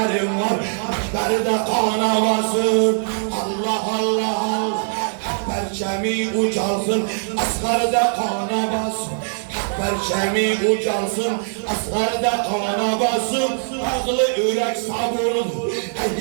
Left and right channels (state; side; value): silent; left; digital silence